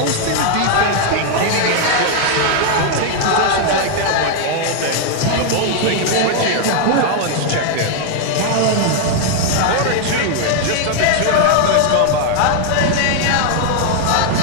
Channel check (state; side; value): different; both; correlation 0.00